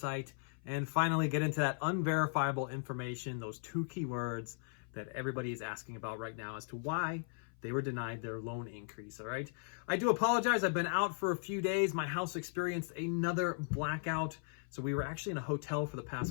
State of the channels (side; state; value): right; silent; 53 dB below the other